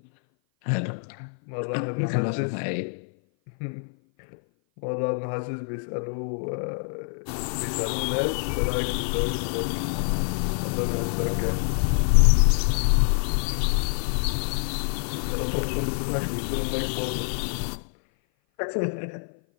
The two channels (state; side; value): silent; right; 56 dB below the other